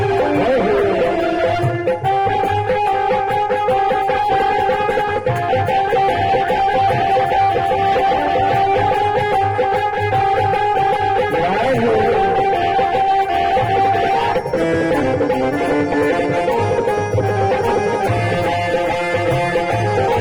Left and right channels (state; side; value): identical; both; correlation 1.00